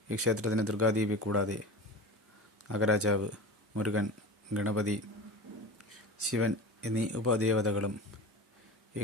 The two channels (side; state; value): both; normal; correlation 0.32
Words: ഈ ക്ഷേത്രത്തിന് ദുർഗാദേവി കൂടാതെ നാഗരാജാവ്, മുരുകൻ, ഗണപതി, ശിവൻ എന്നീ ഉപദേവതകളും ഈ